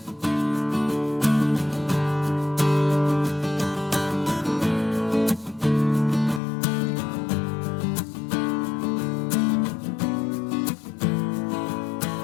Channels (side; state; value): right; drops out; at 6.4 s